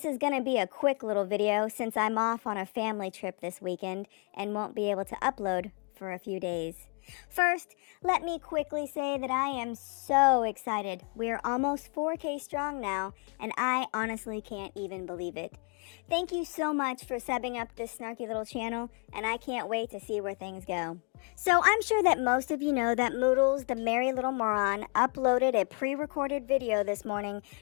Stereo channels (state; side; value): quieter; right; 35.5 dB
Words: is gonna be a quick little video since I'm off on a family trip this weekend and won't be able to upload for a few days. First, let me quickly say that I am so excited. We're almost 4K strong now, and I honestly can't even believe it. Thank you so much for subbing up this snarky little channel, and I can't wait to see where things go. So I'm sure that most of you know that Moodles, the merry little moron, uploaded a pre-recorded video this morning